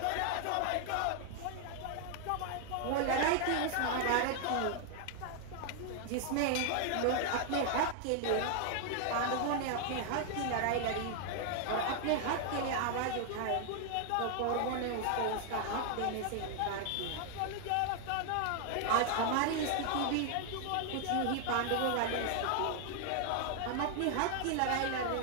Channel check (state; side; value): different; both; correlation 0.00